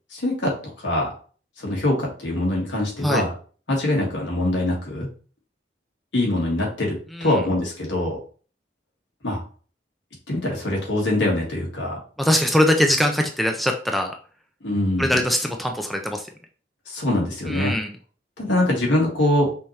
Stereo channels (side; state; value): both; normal; correlation 0.65